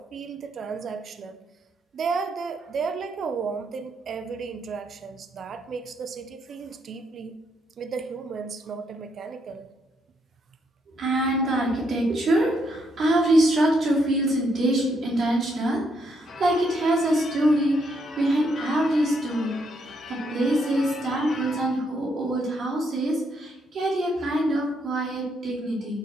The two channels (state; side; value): normal; both; correlation 0.75